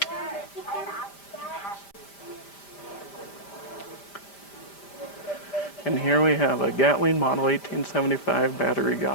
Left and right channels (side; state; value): right; late; 5.0 ms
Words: And here we have a Gatling Model 1875 battery